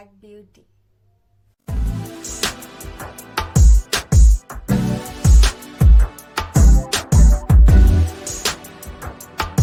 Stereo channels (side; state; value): both; identical; correlation 1.00